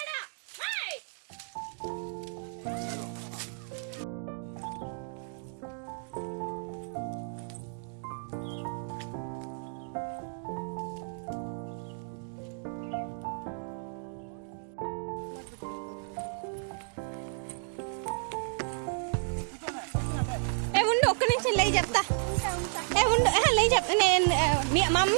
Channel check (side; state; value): left; silent; 57 dB below the other